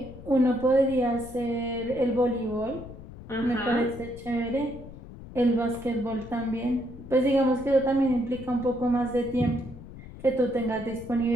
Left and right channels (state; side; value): noise; left; rumble, 15 dB below the sound